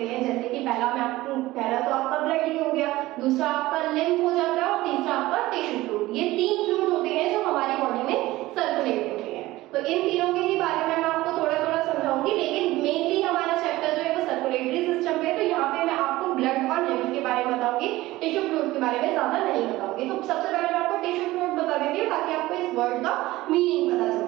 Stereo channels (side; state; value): left; quieter; 17.9 dB